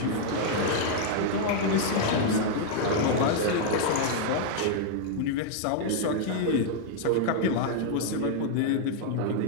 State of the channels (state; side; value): different; both; correlation -0.01